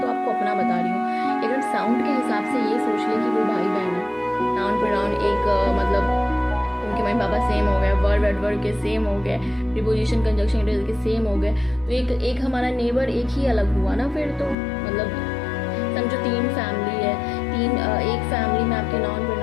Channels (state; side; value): drops out; right; at 14.6 s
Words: तो आपको अपना बता रही हूँ, लेकिन साउंड के हिसाब से ये सोच ले कि वो भाई बहन है। नाउन प्रोनाउन एक मतलब उनके मम्मी पापा सेम हो गए, वर्ब एडवर्ब के सेम हो गए, प्रीपोजिशन कंजक्शन इंटरजेक्शन के सेम हो गए, तो एक हमारा नेबर एक ही अलग हुआ ना फिर तो। मतलब समझो 3 फैमिली है, एक फैमिली में आपके नाउन